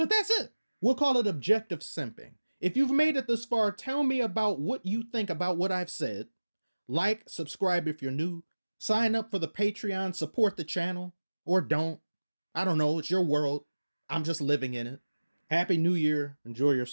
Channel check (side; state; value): both; inverted; correlation -1.00